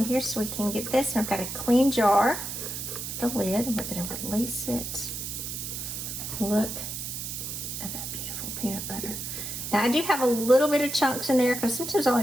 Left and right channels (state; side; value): noise; right; hiss, 6 dB below the sound